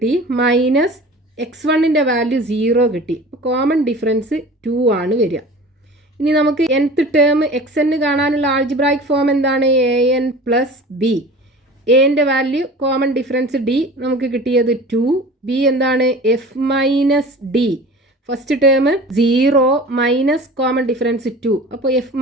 മൈനസ് x1ൻ്റെ വാല്യൂ 0 കിട്ടി. അപ്പോൾ കോമൺ ഡിഫറൻസ് 2 ആണ് വരിക. ഇനി നമുക്ക് nth ടേം xn കാണാനുള്ള ആൾജിബ്രായിക് ഫോം എന്താണ്? an plus B. എൻ്റെ വാല്യൂ കോമൺ ഡിഫറൻസ് d, നമുക്ക് കിട്ടിയത് 2. b എന്താണ്? f minus D. First term 0 minus common difference 2. അപ്പോൾ f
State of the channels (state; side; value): normal; both; correlation 0.40